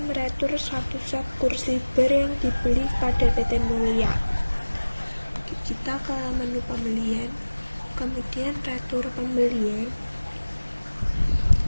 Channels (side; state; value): both; inverted; correlation -1.00